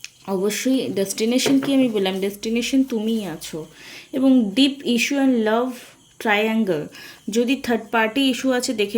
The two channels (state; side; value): identical; both; correlation 1.00